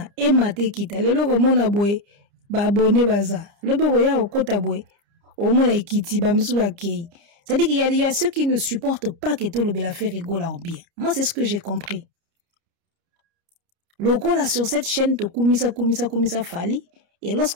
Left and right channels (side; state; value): left; late; 30 ms